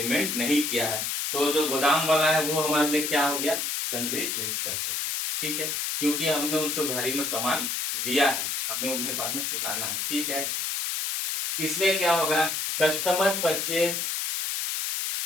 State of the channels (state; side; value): noise; left; hiss, 1 dB below the sound